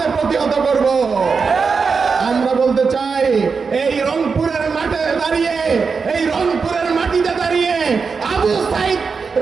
প্রতিহত করব। আমরা বলতে চাই এই রংপুরের মাঠে দাঁড়িয়ে, এই রংপুরের মাটিতে দাঁড়িয়ে আবু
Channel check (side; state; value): left; quieter; 5.2 dB